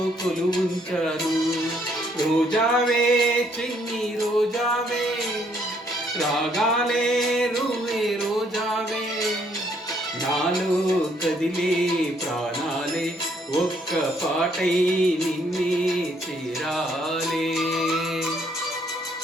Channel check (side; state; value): both; normal; correlation 0.68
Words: కొలువుంచాను, రోజావే చిన్ని రోజావే రాగాలే రువే రోజావే, నాలో కదిలే ప్రాణాలే ఒక్క పాటై నిన్నే చేరాలే.